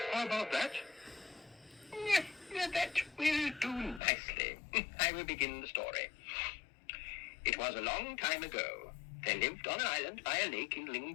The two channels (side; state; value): right; drops out; at 4.0 s